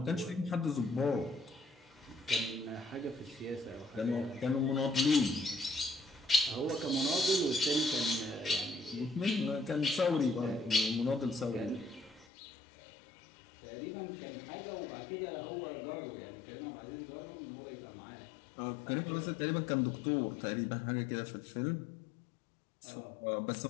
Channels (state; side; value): drops out; right; at 12.2 s